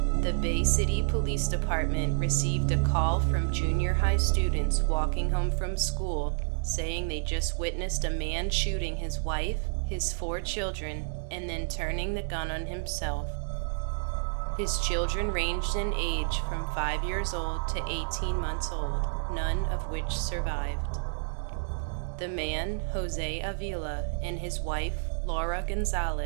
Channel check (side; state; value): left; silent; digital silence